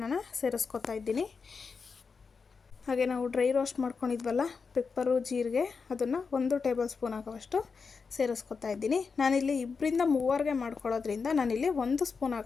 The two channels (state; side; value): quieter; right; 5.1 dB